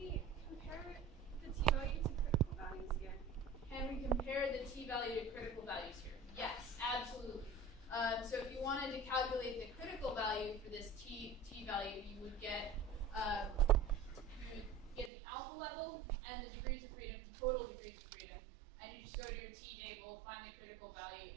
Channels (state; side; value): drops out; left; at 15.1 s